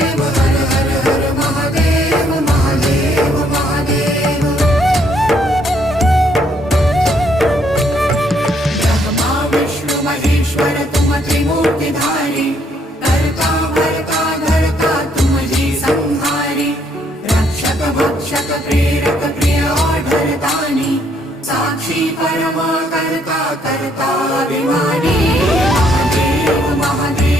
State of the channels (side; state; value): both; normal; correlation 0.69